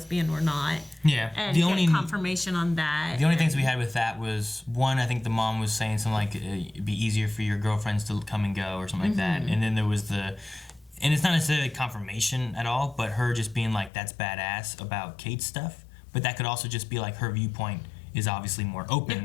or not. Yeah. And get confirmation on that. The only things we had with that was, one, I think the mom was saying something like, it'd be easier for your girlfriends to come and go or something like that. And then there was and it's not necessarily confirmation at all, but her just being like, that's badass about Kate's stuff. But that could also just be like her viewpoint is obviously more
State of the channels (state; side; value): drops out; right; at 13.9 s